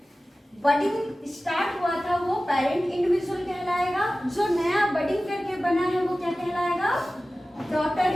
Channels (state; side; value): normal; both; correlation 0.96